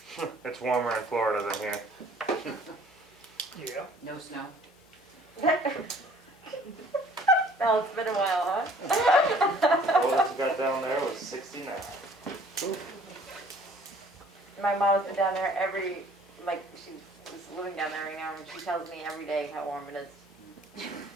It's warmer in Florida than here. Yeah. No snow. Oh, it's been a while, huh? Oldest we got down there was 69. My mom's been down there she's living down there right now, and she tells me every day how warm it is.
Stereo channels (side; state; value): both; normal; correlation 0.55